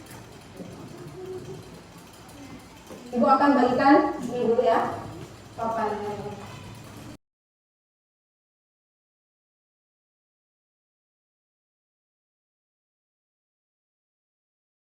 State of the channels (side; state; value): both; identical; correlation 1.00